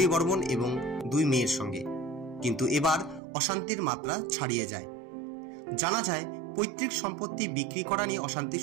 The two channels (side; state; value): left; drops out; at 3.2 s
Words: বর্মন এবং 2 মেয়ের সঙ্গে। কিন্তু এবার অশান্তির মাত্রা ছাড়িয়ে যায়। জানা যায় পৈতৃক সম্পত্তি বিক্রি করা নিয়ে অশান্তি